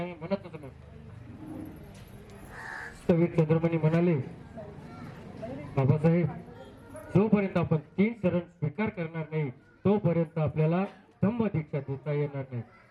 म्हणत होते. स्थविर चंद्रमणी म्हणाले, बाबासाहेब, जोपर्यंत आपण 3 शरण स्वीकार करणार नाही तोपर्यंत आपल्याला धम्म दीक्षा देता येणार नाही.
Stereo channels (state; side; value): identical; both; correlation 1.00